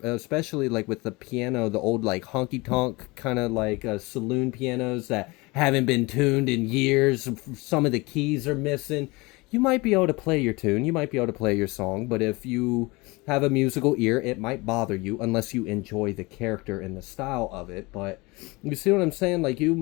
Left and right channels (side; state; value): right; quieter; 24.3 dB